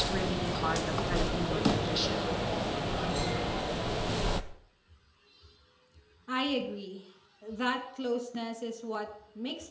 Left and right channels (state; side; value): identical; both; correlation 1.00